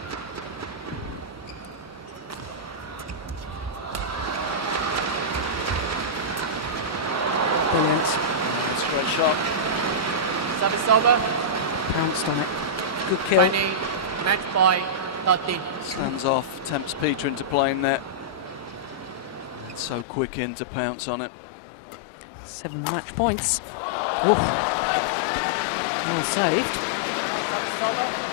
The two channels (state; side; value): drops out; right; at 20.1 s